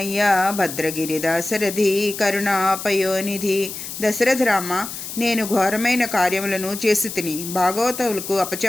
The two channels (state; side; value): noise; left; hiss, 9 dB below the sound